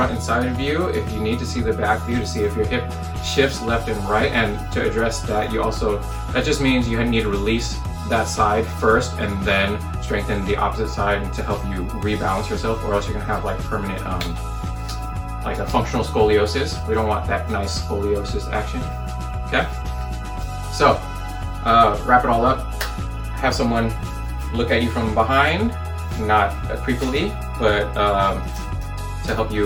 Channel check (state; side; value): identical; both; correlation 1.00